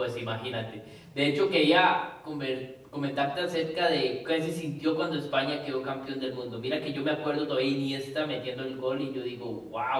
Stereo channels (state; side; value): identical; both; correlation 1.00